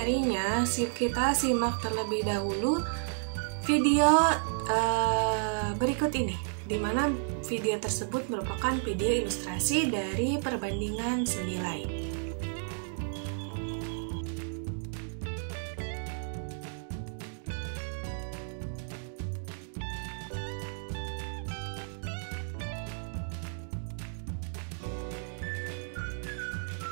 kita simak terlebih dahulu video berikut ini, di mana video tersebut merupakan video ilustrasi dari perbandingan senilai.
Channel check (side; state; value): left; silent; digital silence